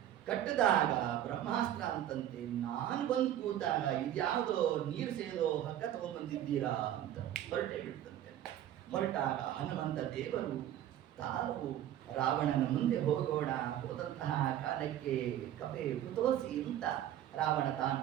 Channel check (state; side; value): quieter; left; 11.7 dB